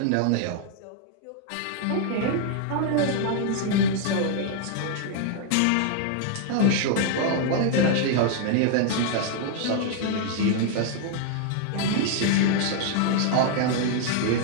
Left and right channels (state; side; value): different; both; correlation 0.00